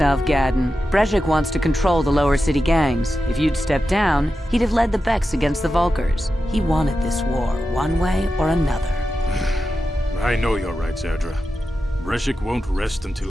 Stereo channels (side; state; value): both; normal; correlation 0.91